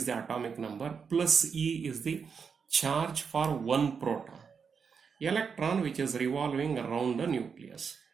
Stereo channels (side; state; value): left; quieter; 6.1 dB